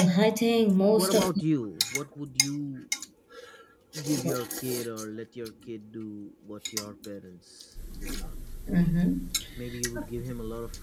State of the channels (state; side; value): identical; both; correlation 1.00